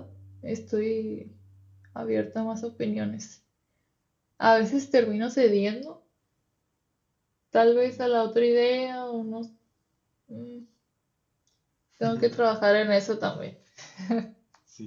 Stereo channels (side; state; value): both; identical; correlation 1.00